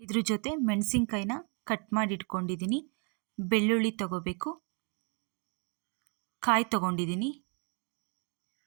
ಇದ್ರ ಜೊತೆ ಮೆಣಸಿನ್ಕಾಯಿನ ಕಟ್ ಮಾಡಿ ಇಟ್ಕೊಂಡಿದ್ದೀನಿ. ಬೆಳ್ಳುಳ್ಳಿ ತಗೋಬೇಕು, ಕಾಯಿ ತಗೊಂಡಿದ್ದೀನಿ,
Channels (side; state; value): left; quieter; 37.0 dB